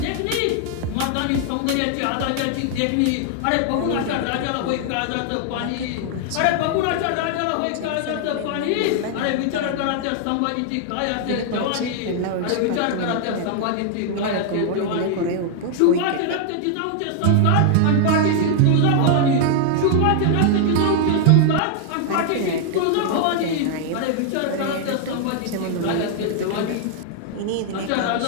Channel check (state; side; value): different; both; correlation 0.00